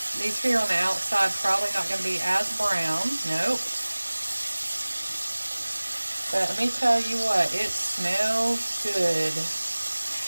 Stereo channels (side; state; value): both; inverted; correlation -1.00